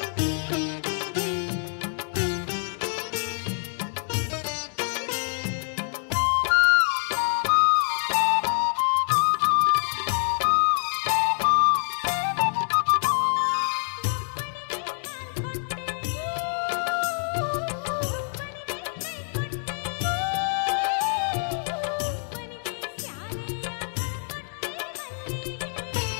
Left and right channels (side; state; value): right; silent; 61 dB below the other